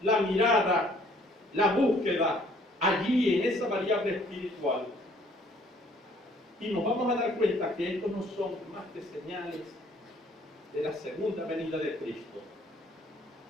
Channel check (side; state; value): both; normal; correlation 0.60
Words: la mirada, la búsqueda allí en esa variable espiritual y nos vamos a dar cuenta que estos no son más que señales de la segunda venida de Cristo,